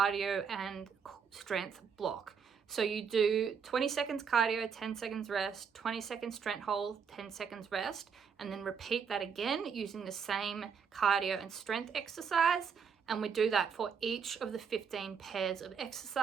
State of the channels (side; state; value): left; quieter; 6.5 dB